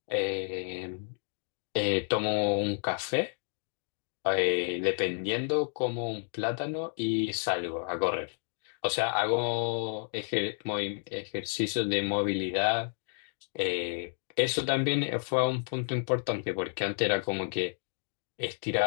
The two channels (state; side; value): silent; right; digital silence